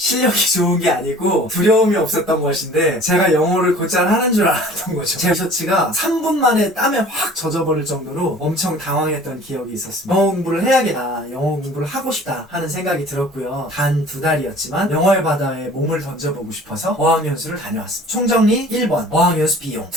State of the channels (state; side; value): normal; both; correlation 0.47